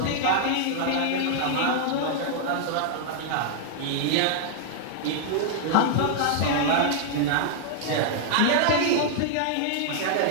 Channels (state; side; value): different; both; correlation -0.01